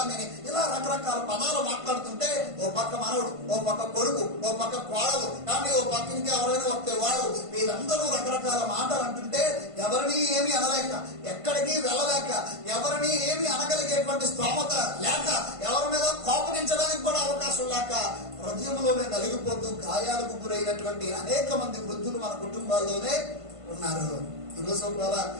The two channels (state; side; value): late; left; 1.5 ms